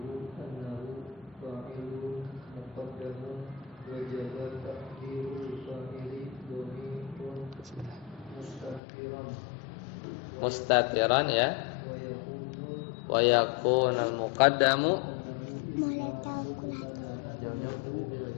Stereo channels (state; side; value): drops out; right; at 8.8 s